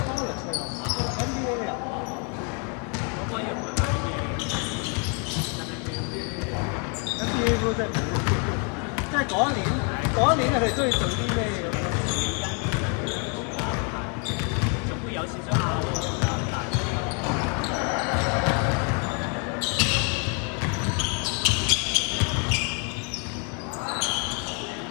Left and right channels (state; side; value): quieter; right; 36.9 dB